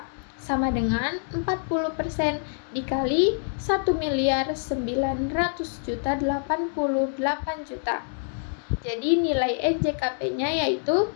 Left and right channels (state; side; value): silent; right; digital silence